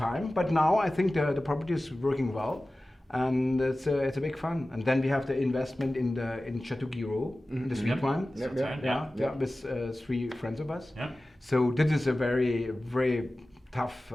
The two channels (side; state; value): both; normal; correlation 0.96